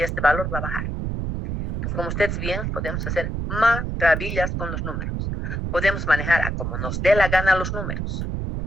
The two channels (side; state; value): right; noise; rumble, 3 dB below the sound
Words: este valor va a bajar. Entonces, como ustedes ven, podemos hacer maravillas con los números. Podemos manejar a como nos dé la gana los números,